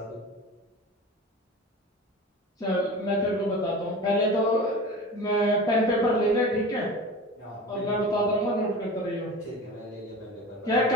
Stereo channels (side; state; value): both; normal; correlation 0.34